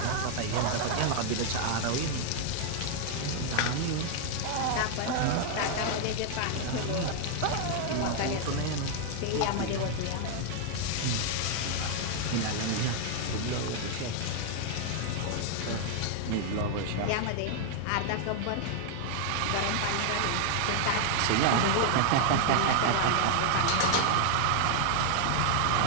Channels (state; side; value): different; both; correlation 0.00